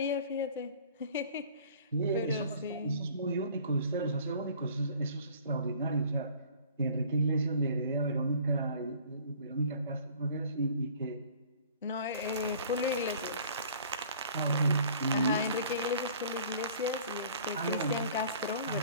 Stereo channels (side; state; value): both; inverted; correlation -0.50